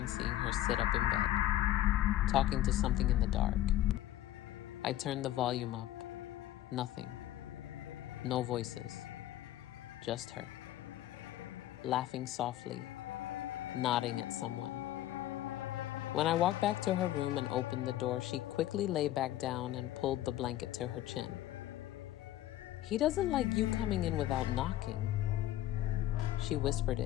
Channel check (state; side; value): quieter; right; 13.9 dB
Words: seeing her sit up in bed, talking to something in the dark. I turned the volume up. Nothing. No voices. Just her. Laughing softly, nodding at someone. When I walked back to her room and opened the door, she quickly lay back down and pulled the blanket to her chin. "He doesn't like you coming in without knocking." She whispered